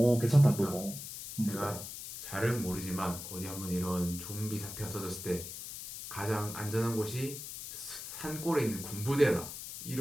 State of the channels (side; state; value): left; noise; hiss, 9 dB below the sound